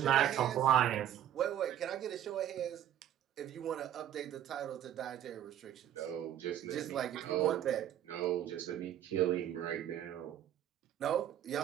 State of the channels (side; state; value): left; quieter; 11.1 dB